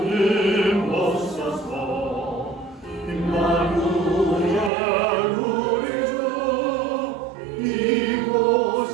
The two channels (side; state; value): left; drops out; at 4.7 s